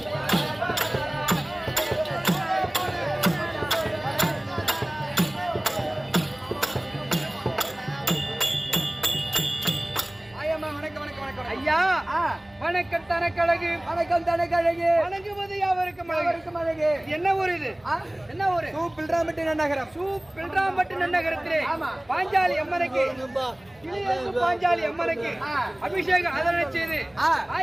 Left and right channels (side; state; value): right; noise; hum, 29 dB below the sound